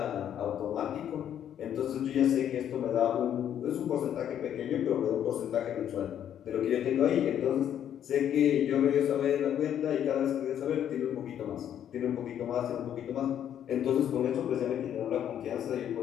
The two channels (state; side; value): quieter; right; 9.9 dB